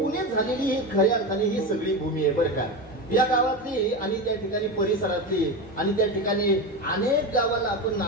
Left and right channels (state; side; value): normal; both; correlation 0.20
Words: झालेली ही खऱ्या अर्थाने ही सगळी भूमी आहे बरं का. या गावातली आणि त्या ठिकाणी परिसरातली आणि त्या ठिकाणी अनेक गावाला आपण